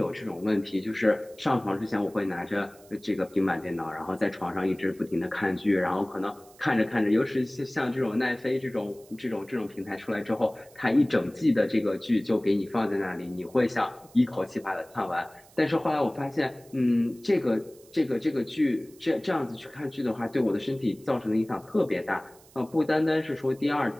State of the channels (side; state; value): right; noise; hiss, 26 dB below the sound